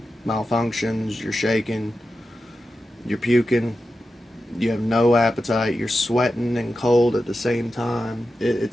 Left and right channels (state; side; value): normal; both; correlation 0.91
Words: malfunctions, you're shaking, you're puking, you have no appetite, you're sweating and cold at the same time.